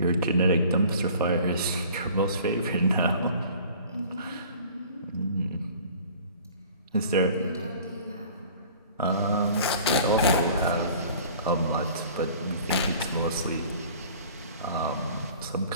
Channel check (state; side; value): inverted; both; correlation -0.47